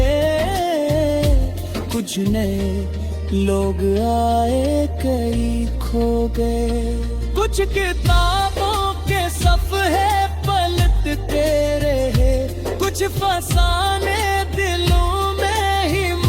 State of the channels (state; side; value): identical; both; correlation 1.00